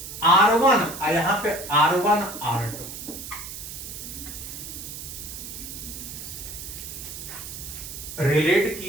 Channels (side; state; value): right; noise; hiss, 10 dB below the sound